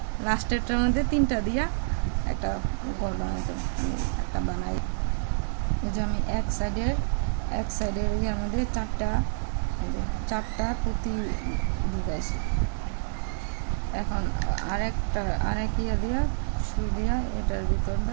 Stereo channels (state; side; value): silent; left; digital silence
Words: লাস্টেরটার মধ্যে 3টা দিয়া একটা গোল বানাইতে হবে। আমি একটা বানাই, এই যে আমি এক সাইডের ইয়ার মধ্যে 4টা পুঁতি ঢুকাইছি। এখন আরেক ইয়া দিয়া সুই দিয়া এটার